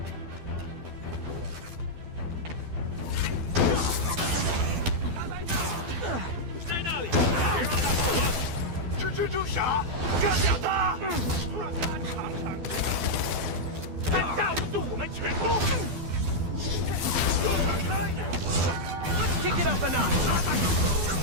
Let's kick it up a notch.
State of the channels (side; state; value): left; late; 12 ms